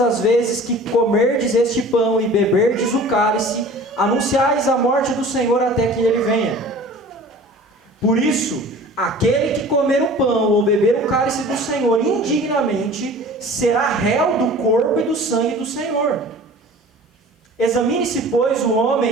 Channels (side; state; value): both; normal; correlation 0.43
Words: vezes que comerdes este pão e beberdes o cálice, anunciais a morte do Senhor até que ele venha. Por isso, aquele que comer o pão ou beber o cálice do Senhor indignamente, será réu do corpo e do sangue do Senhor. Examine-se, pois, o